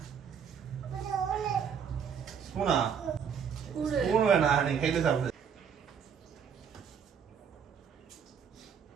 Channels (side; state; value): left; quieter; 7.2 dB